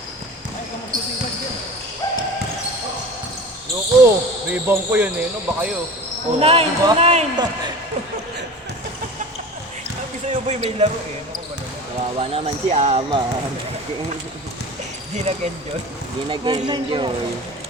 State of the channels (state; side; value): normal; both; correlation 0.36